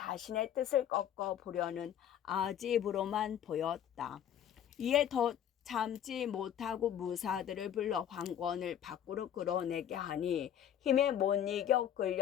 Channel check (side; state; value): right; quieter; 10.0 dB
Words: 뜻을 꺾어보려는 아집으로만 보였다. 이에 더 참지 못하고 무사들을 불러 황권을 밖으로 끌어내게 하니 힘에 못 이겨